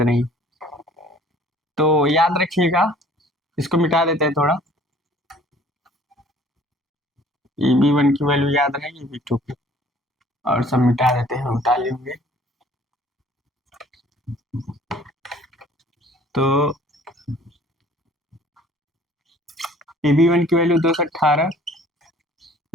तो याद रखिएगा, इसको मिटा देते हैं थोड़ा, ईबी वन की वैल्यू याद रहेगी ईबी टू की, और सब मिटा देते हैं, उतार लेंगे, तो ईबी वन की वैल्यू 218,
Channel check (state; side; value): normal; both; correlation 0.54